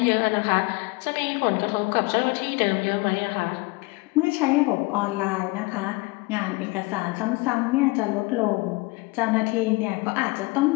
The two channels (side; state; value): right; quieter; 24.9 dB